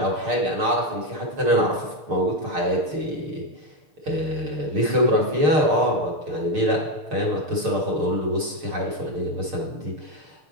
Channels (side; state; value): left; late; 6.6 ms